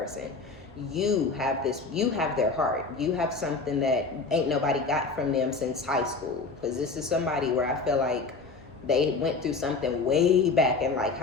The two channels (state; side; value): quieter; right; 4.1 dB